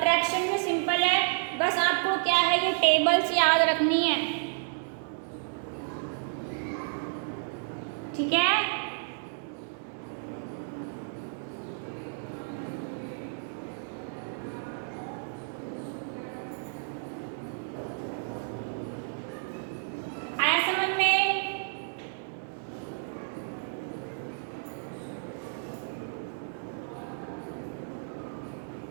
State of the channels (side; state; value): left; silent; digital silence